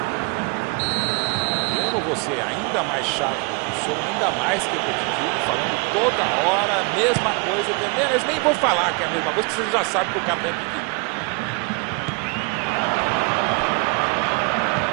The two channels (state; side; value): quieter; left; 31.8 dB